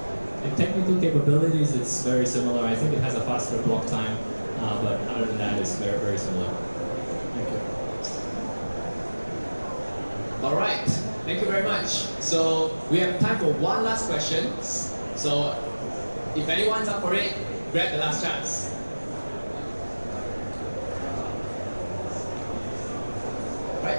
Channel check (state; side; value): inverted; both; correlation -1.00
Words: In technical capabilities, it's very similar. I think it has a faster block time, but other than that, it's very, very similar. Thank you. All right. Thank you very much. So we have time for one last question. So if anyone's up for it, grab the last chance.